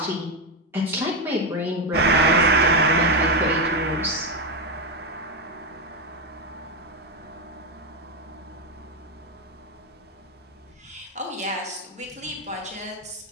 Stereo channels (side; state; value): both; normal; correlation 0.08